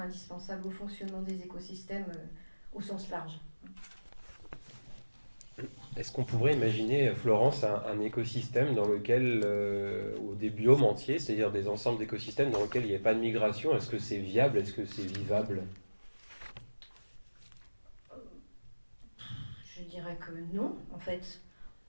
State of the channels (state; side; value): inverted; both; correlation -1.00